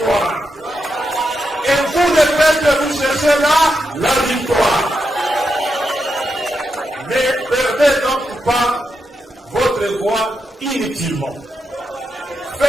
Et vous, le peuple, vous cherchez là la victoire. Ne perdez donc pas inutilement.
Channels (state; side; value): normal; both; correlation 0.85